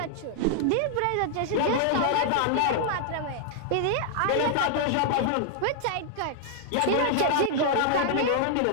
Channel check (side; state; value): both; different; correlation -0.01